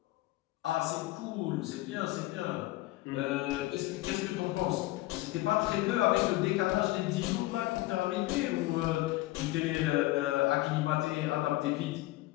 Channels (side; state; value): right; quieter; 18.4 dB